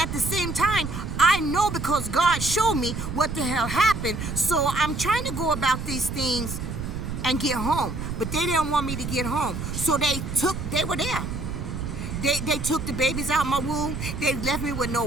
the same time, I know because God showed me what the hell happened. So I'm trying to go about these things and get home, but they didn't want me to get home. So they were there. They took the babies out of my womb. They left me with no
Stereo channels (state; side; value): noise; right; rumble, 5 dB below the sound